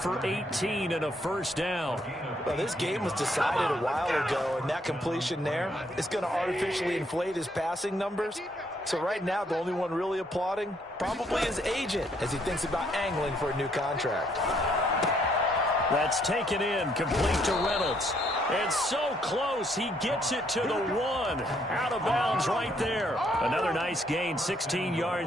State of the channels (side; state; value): both; normal; correlation 0.70